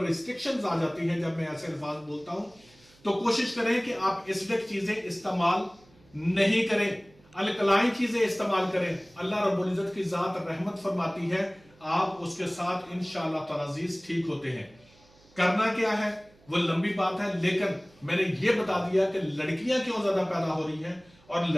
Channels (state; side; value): noise; right; hum, 29 dB below the sound